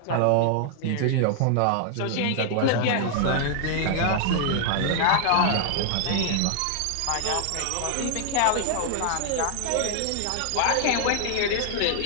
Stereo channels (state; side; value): different; both; correlation 0.00